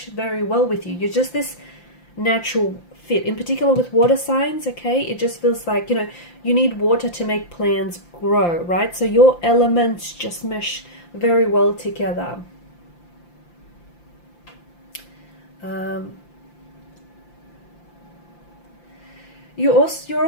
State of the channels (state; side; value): late; right; 5.8 ms